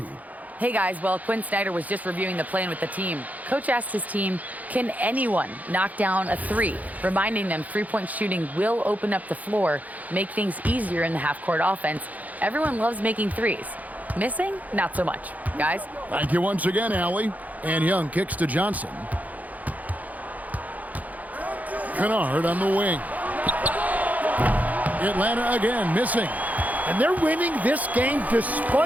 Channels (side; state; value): left; late; 0.077 ms